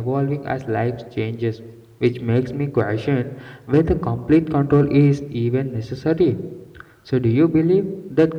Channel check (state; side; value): identical; both; correlation 1.00